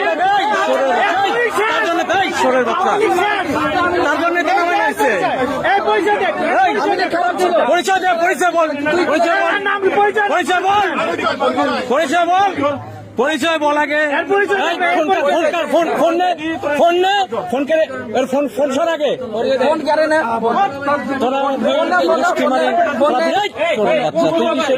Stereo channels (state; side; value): identical; both; correlation 1.00